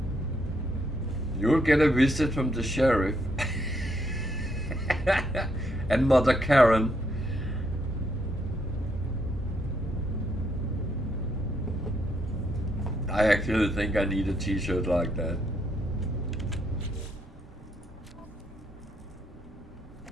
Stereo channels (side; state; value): both; normal; correlation 0.75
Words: You'll get a visit from the sheriff and Mother Karen. I actually think I need a t-shirt like that.